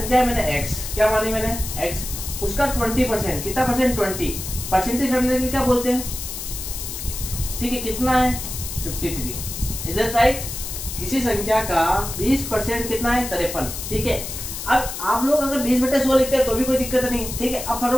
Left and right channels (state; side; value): noise; left; hiss, 7 dB below the sound